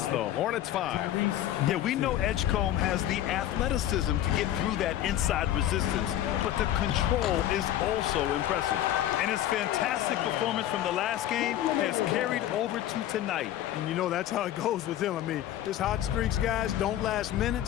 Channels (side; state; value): right; quieter; 12.3 dB